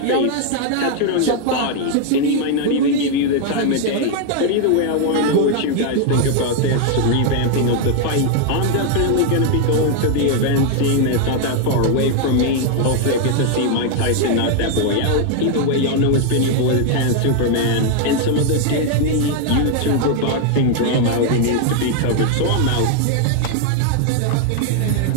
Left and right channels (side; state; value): both; different; correlation 0.00